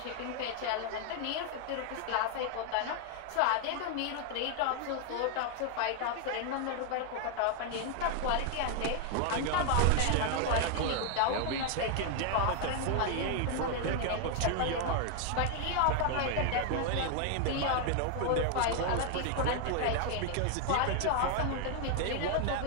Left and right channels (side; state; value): both; different; correlation 0.00